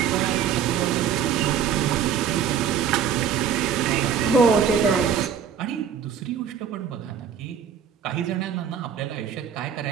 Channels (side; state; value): left; quieter; 7.9 dB